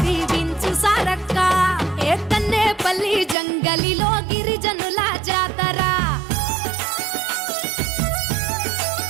దీవించు సారక్క ఏ కన్నేపల్లి జంగలిలో గిరిజనుల జాతర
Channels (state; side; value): drops out; left; at 3.4 s